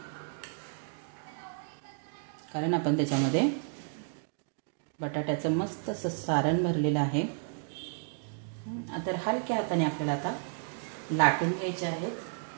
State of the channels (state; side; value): silent; left; 56 dB below the other